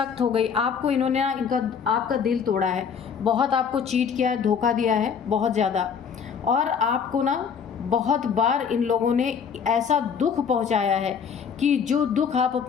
हो गई, आपको इन्होंने आपका दिल तोड़ा है, बहुत आपको चीट किया है, धोखा दिया है बहुत ज़्यादा, और आपको ना बहुत बार इन लोगों ने ऐसा दुख पहुंचाया है कि जो दुख आप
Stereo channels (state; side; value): quieter; right; 6.8 dB